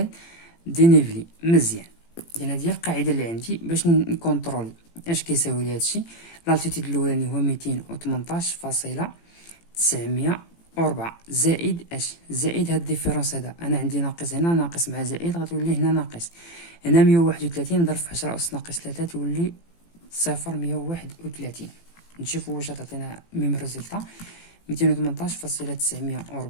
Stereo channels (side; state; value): right; late; 18 ms